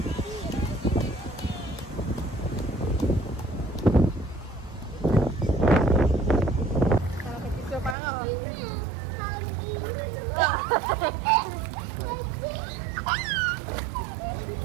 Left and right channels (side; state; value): left; drops out; at 8.0 s